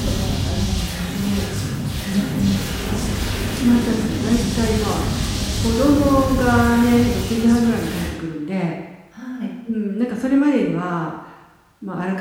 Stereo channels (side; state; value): both; identical; correlation 1.00